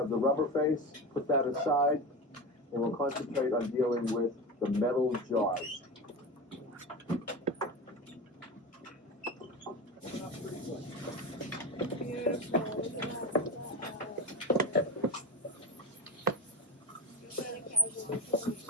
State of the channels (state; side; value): normal; both; correlation 0.23